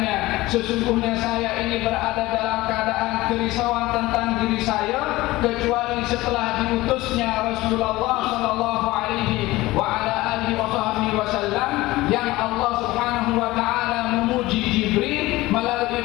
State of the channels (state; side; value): quieter; right; 18.8 dB